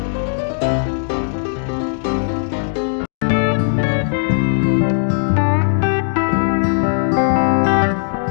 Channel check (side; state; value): right; silent; digital silence